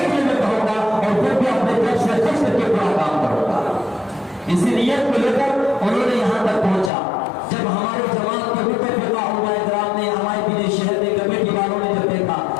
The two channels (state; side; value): drops out; right; at 6.9 s